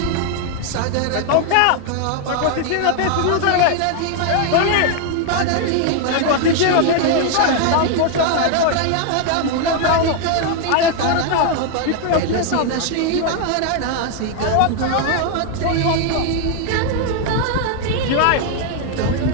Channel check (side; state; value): both; different; correlation 0.00